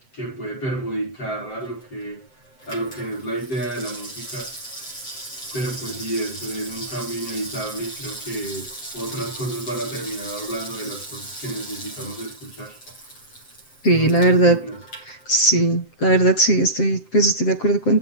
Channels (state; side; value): late; right; 7.7 ms